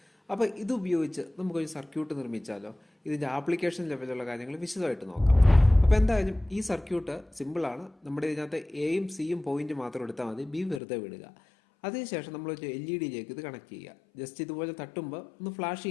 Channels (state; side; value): drops out; right; at 10.8 s